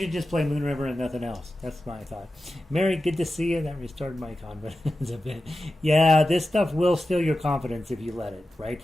just play Moon River and nothing else. That's my thought. Mary, good to see you. That restored my confidence a bit. Yeah, this stuff will steal your confidence if you let it, right?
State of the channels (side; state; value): both; normal; correlation 0.93